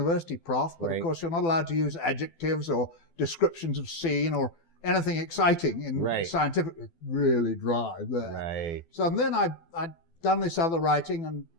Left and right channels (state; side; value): late; right; 12 ms